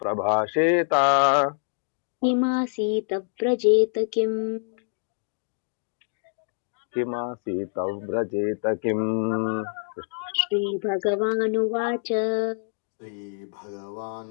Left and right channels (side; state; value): right; silent; digital silence